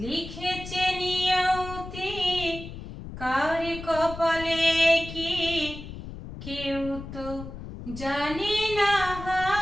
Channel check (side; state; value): left; noise; rumble, 11 dB below the sound